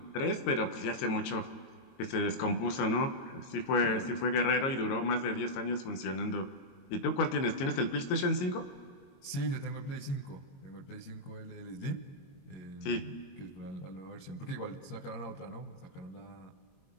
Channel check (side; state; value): right; late; 22 ms